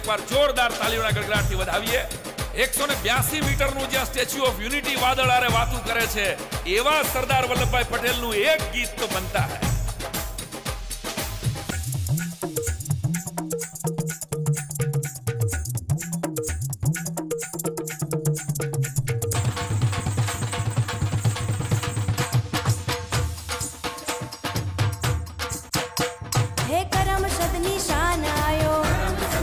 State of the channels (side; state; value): both; identical; correlation 1.00